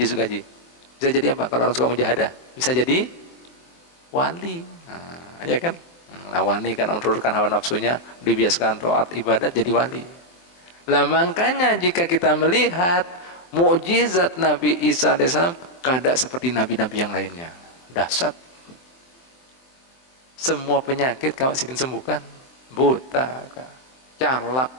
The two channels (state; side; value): late; right; 23 ms